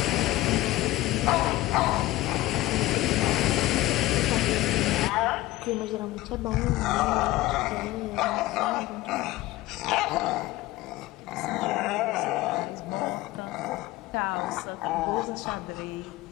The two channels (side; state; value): right; quieter; 17.4 dB